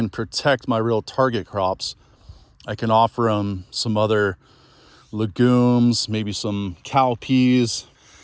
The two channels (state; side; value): identical; both; correlation 1.00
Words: protect my real target crops, I can offer them some other legumes, maybe some cowpeas.